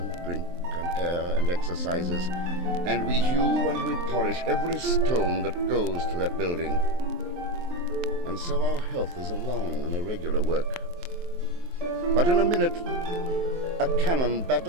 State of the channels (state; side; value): late; left; 23 ms